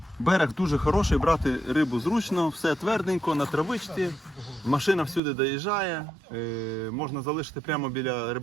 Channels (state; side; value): drops out; left; at 5.2 s